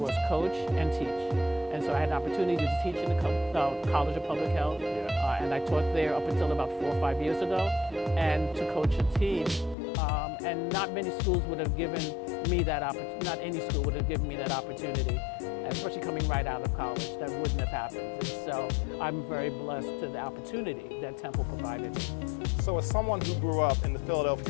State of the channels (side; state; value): right; drops out; at 9.8 s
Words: coach and teach. And so I had an opportunity to teach in the College of Public Health, and I taught there up until about 4 or 5 years ago, and to coach a team. And not many schools would have given me that opportunity, not any school would have given me that opportunity, especially coming right out of college. That wouldn't have happened. And so I'm very blessed to the opportunity that Temple provided me. So as someone who grew up in the